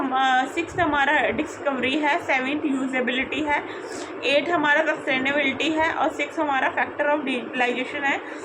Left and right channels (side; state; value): both; identical; correlation 1.00